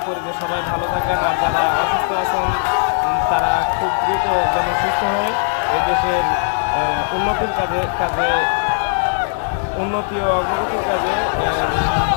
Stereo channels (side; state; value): right; silent; digital silence